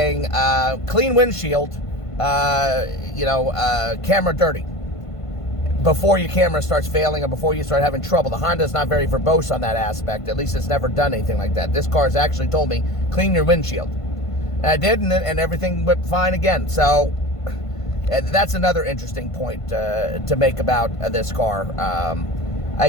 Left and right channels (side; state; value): right; late; 1.5 ms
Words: clean windshield, camera dirty, before your camera starts failing or before you start having trouble. The Honda's not very verbose on that aspect. At least it's never done anything like that. This car has actually told me, clean your windshield. And I did, and everything went fine again. So that's another interesting point to make about this car. I